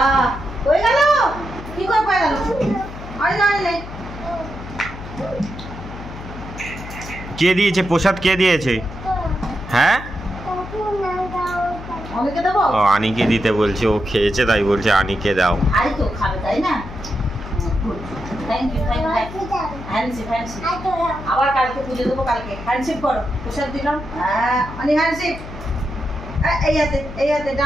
কে দিয়েছে প্রসাদ? কে দিয়েছে? হ্যাঁ, ও আনিকে দিতে বলছে। ও খেয়েছে তাই বলছে আনিকে দাও। আবার কালকে পুজো দেবো, কালকে হ্যান্ডশিপ করো। প্রসাদ দিলাম। অনেক হ্যান্ডশিপ। এই হাতে, এই হাতে,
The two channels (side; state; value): left; noise; hum, 12 dB below the sound